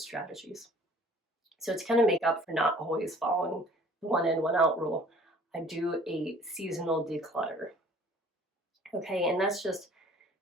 So to kind of make up for not always following the 1 in, 1 out rule, I do a seasonal declutter. Okay, and that's just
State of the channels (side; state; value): both; normal; correlation 0.52